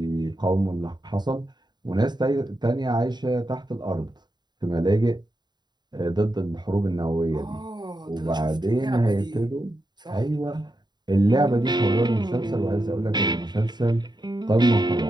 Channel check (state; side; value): late; left; 0.21 ms